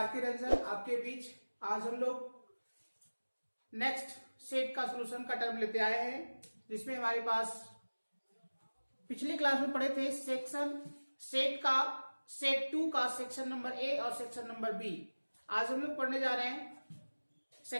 Ranjan आपके बीच आज हम लोग नेक्स्ट सेट का सॉल्यूशन का टर्म लेते आए हैं, जिसमें हमारे पास पिछली क्लास में पढ़े थे सेट 2 का सेक्शन नंबर ए और सेक्शन नंबर बी। आज हम लोग पढ़ने जा रहे हैं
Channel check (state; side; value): inverted; both; correlation -1.00